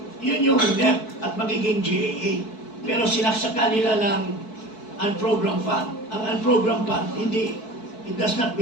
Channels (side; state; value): right; late; 4.6 ms